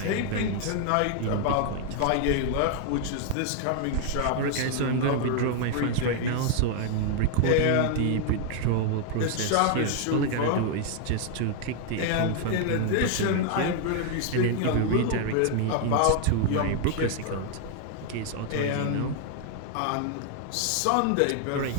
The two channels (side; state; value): both; different; correlation 0.00